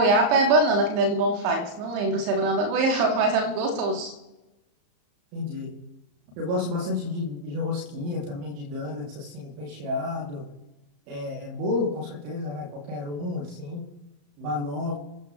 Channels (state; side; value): late; left; 34 ms